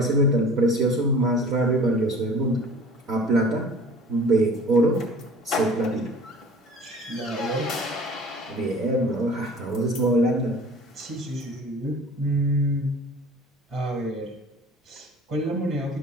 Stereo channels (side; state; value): both; normal; correlation 0.45